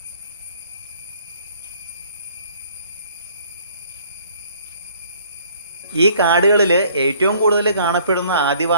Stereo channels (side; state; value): both; inverted; correlation -0.58